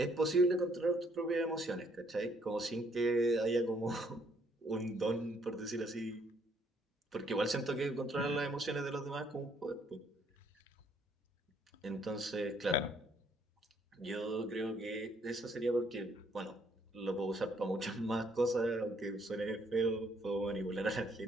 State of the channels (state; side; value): normal; both; correlation 0.67